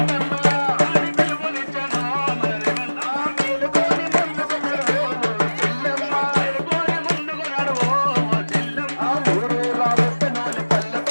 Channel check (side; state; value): both; inverted; correlation -1.00